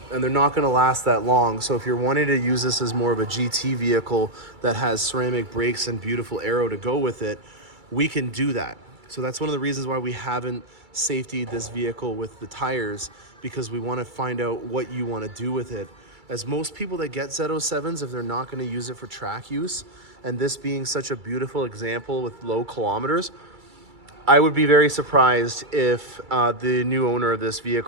and they're not going to last that long. So if you're wanting to use this as more of a GT vehicle that has ceramic brakes and beautiful aero to go with it, we can do that. So that's one of the reasons why we haven't safetied this vehicle with the tires, because we want to find out what you want to do with it. As most people that get Z07s, if they're not going to use it for track use, and this being such a beautiful example with low kilometers, I would be very surprised if the new owner of this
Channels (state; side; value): late; left; 2.3 ms